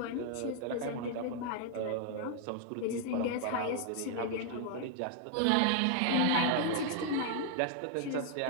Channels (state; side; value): different; both; correlation 0.00